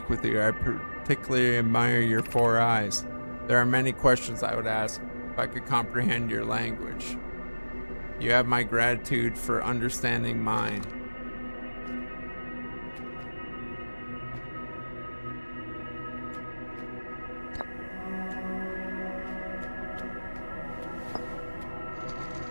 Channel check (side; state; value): both; inverted; correlation -1.00